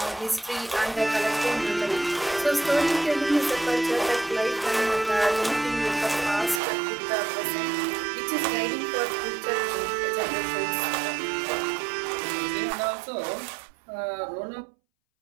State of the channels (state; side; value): drops out; left; at 6.6 s